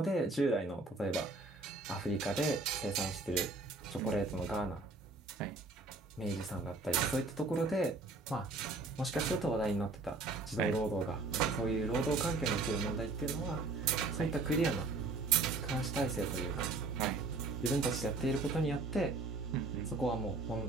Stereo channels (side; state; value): left; quieter; 3.4 dB